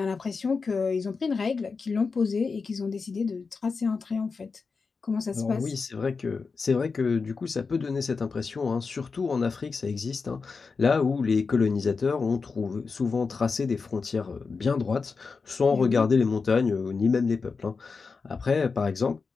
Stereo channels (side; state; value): right; quieter; 4.8 dB